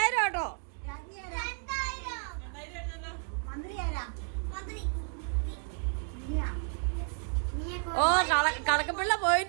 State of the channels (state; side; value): quieter; left; 38.5 dB